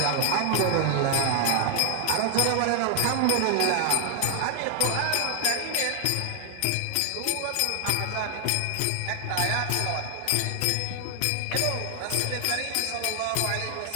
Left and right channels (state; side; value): different; both; correlation 0.00